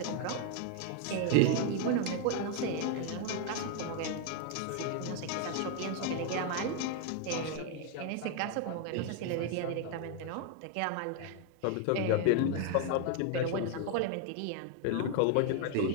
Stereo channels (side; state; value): both; different; correlation 0.00